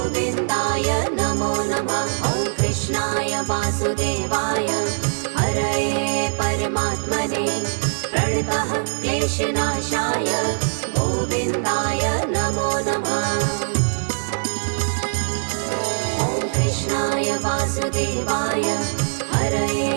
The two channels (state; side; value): silent; left; digital silence